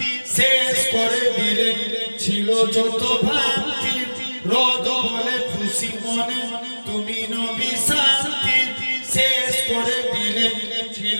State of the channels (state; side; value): inverted; both; correlation -1.00